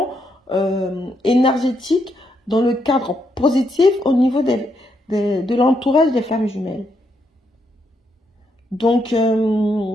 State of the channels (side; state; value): both; normal; correlation 0.78